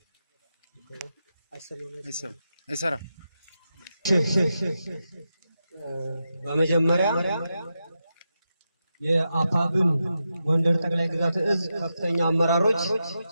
አይሰራ በመጀመሪያ የአፋብን ጎንደር ጠቅላይ ግዛት እዝ ከፍተኛ አመራሮች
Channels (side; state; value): both; inverted; correlation -0.88